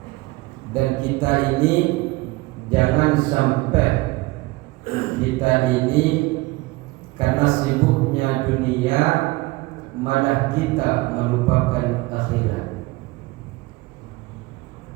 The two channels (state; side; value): quieter; left; 21.7 dB